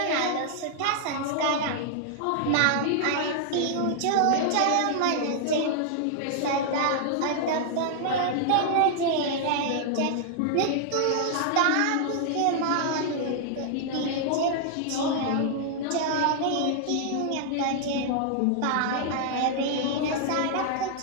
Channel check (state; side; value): different; both; correlation -0.01